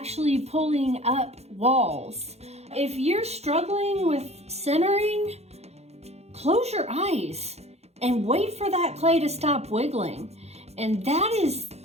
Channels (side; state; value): left; late; 0.31 ms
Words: pulling up walls. If you're struggling with centering, close your eyes and wait for that clay to stop wiggling. And that is